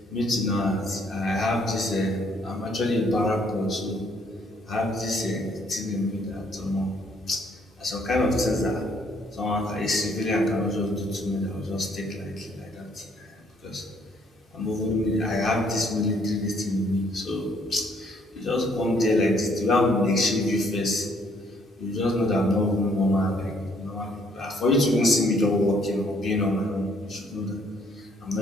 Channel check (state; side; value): normal; both; correlation 0.66